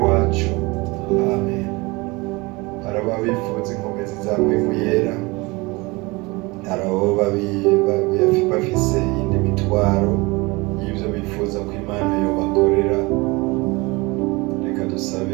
wacu, amen. Hari ababifuza inkomezi zawe mu yera, hari abo bafise iyindi mitwaro y'ibyo bifuza ko Imana yobakorera. Reka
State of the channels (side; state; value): left; quieter; 24.6 dB